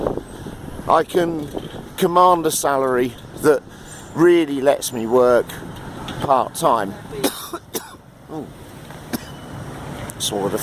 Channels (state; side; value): identical; both; correlation 1.00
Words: I can command a salary that really lets me work part-time. Swallowed a